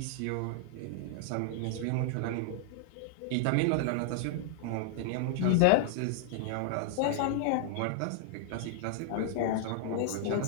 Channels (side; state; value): both; different; correlation -0.01